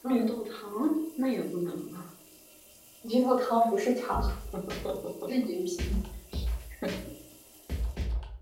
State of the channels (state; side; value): identical; both; correlation 1.00